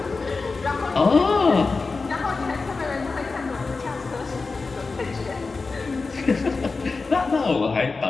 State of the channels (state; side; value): quieter; right; 4.1 dB